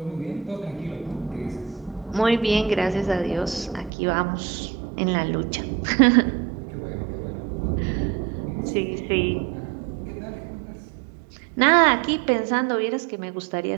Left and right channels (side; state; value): left; drops out; at 3.9 s